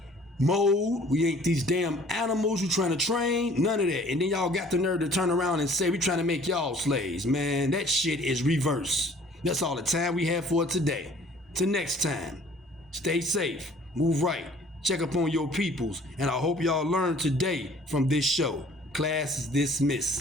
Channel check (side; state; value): both; normal; correlation 0.53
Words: mold. We ain't these damn animals you trying to train. None of that. And then y'all got the nerve to turn around and say we trying to make y'all slaves. Man, that shit is reverse. That's all the time we have for today. Till next time, stay safe, move right, check up on your peoples, and I hope y'all learned today from this show. Class is